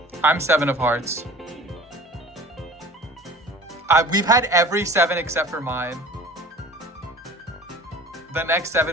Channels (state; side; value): normal; both; correlation 0.44